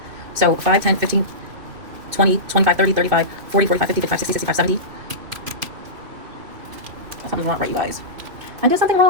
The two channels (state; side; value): late; left; 2.8 ms